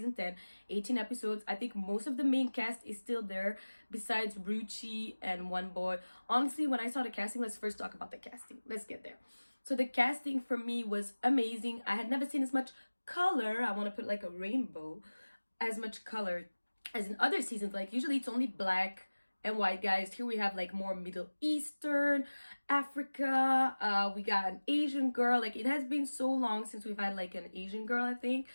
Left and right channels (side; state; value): both; inverted; correlation -1.00